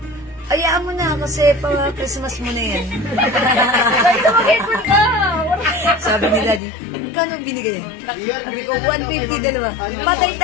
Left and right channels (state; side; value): drops out; right; at 6.6 s